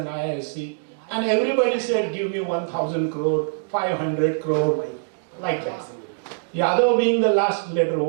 IISc, and everybody said, give me 1,000 crore, 500 crore, like that. Yadav being the last letter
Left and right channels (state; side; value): silent; left; digital silence